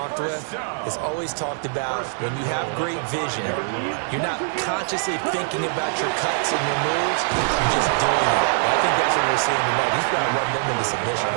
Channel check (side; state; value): left; silent; 59 dB below the other